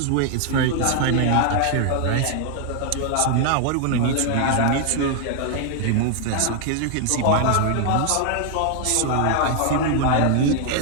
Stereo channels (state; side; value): different; both; correlation 0.00